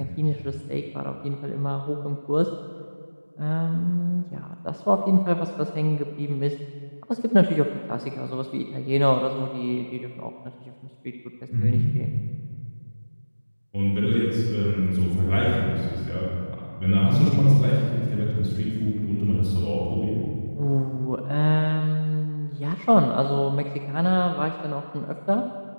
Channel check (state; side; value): inverted; both; correlation -1.00